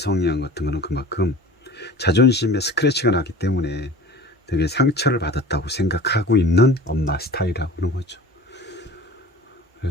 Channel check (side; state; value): both; normal; correlation 0.40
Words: 같은 거는 그만큼 자존심에 스크래치가 나기 때문에 되게 상처를 받았다고 생각하고 있는 엄마 스타일이라고 하는 거죠.